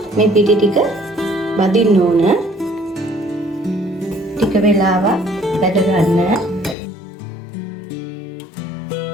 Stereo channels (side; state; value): right; drops out; at 6.8 s